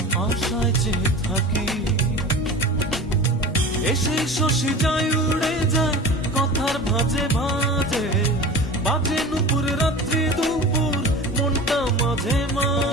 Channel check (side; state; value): both; normal; correlation 0.34